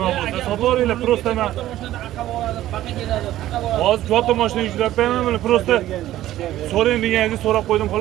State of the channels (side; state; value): left; quieter; 14.1 dB